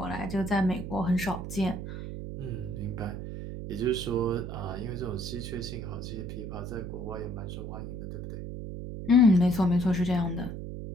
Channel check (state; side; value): noise; right; hum, 7 dB below the sound